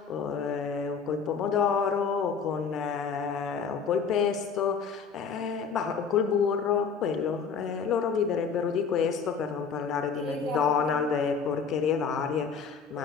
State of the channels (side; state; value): right; quieter; 5.9 dB